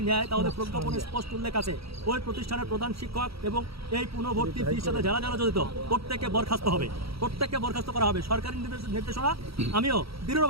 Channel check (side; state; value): left; late; 0.76 ms